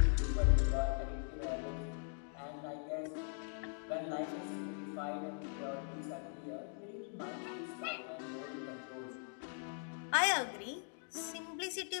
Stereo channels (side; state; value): right; silent; 51 dB below the other